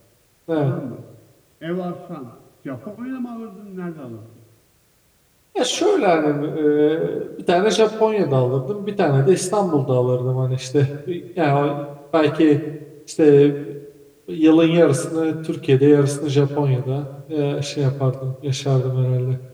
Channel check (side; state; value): both; identical; correlation 1.00